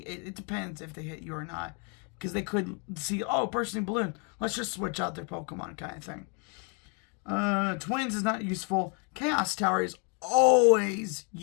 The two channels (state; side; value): quieter; right; 36.6 dB